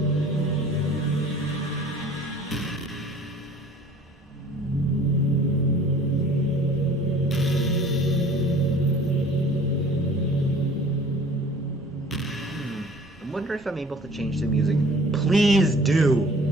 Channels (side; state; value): both; normal; correlation 0.49